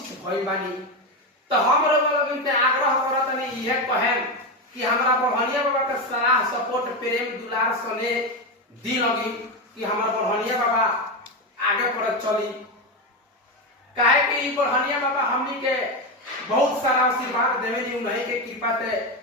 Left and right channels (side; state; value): both; normal; correlation 0.14